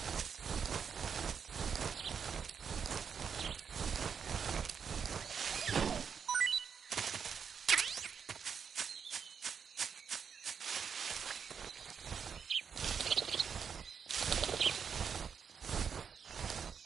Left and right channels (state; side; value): quieter; left; 6.8 dB